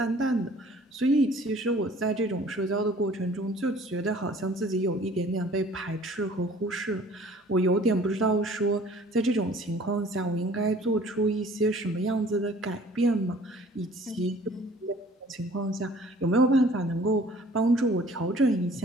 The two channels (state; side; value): normal; both; correlation 0.52